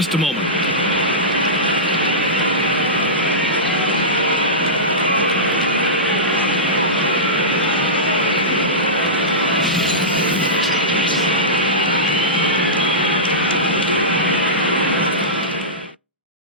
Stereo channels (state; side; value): normal; both; correlation -0.16